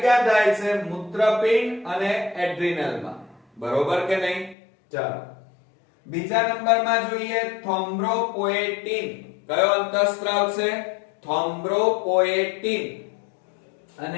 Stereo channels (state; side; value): drops out; right; at 4.5 s